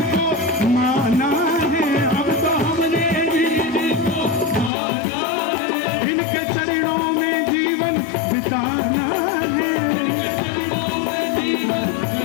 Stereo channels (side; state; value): right; drops out; at 4.7 s